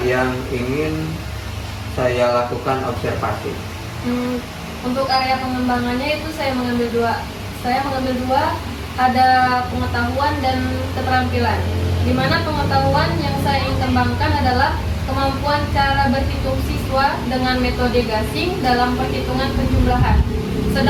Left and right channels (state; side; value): identical; both; correlation 1.00